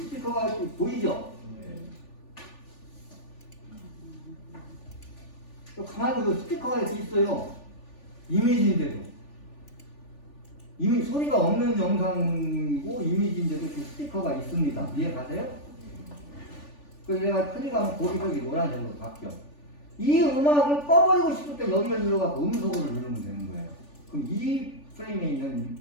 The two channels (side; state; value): right; late; 3.4 ms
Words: 이렇게 보이죠? 또 가만히 그 스피커가 이렇게 있어요. 이미지인데도. 이미 소리가 없는 영상이고 이미지인데도 이렇게 스피커가 있습니다. 이해 가세요? 그래서 내가 크게 가면 고기벽이 노란색으로 바뀌어. 이 음악을 꺼버리고 싶을 때 여기를 눌러갖고 음속으로 누르면 되는 거예요. 그럼 이 프레임에 있는